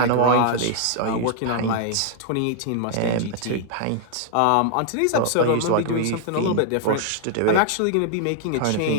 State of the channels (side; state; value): both; different; correlation -0.01